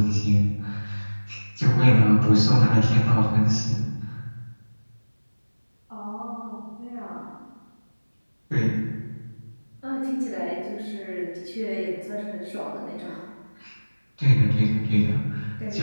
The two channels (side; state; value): both; inverted; correlation -1.00